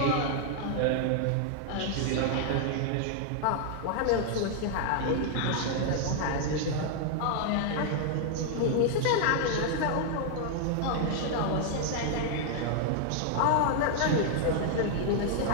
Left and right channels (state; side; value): different; both; correlation 0.00